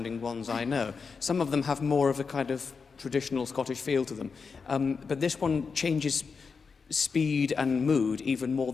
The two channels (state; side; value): quieter; right; 5.2 dB